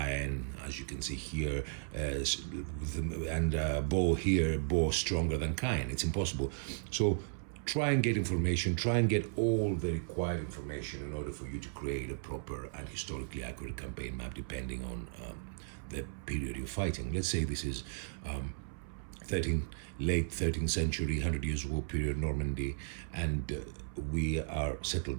as you can see here, and Bow stronger than Caen. It's impossible. So try and get information, try and get all the required information in order for you to create a proper and historically accurate campaign map, depending on the period you're fighting. Let's say this is late 13th century, 100 Years' War period, Normandy, and we are settled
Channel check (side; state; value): left; silent; 54 dB below the other